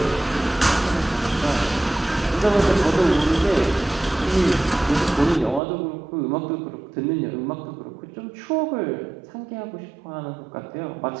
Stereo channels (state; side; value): drops out; left; at 5.6 s